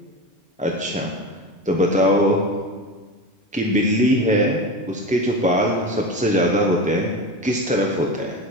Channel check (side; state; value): both; normal; correlation 0.25